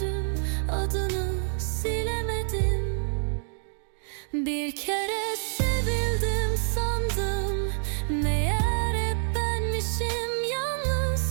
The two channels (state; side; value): silent; left; digital silence